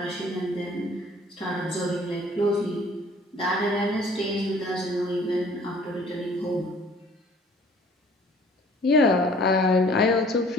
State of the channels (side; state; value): both; normal; correlation 0.54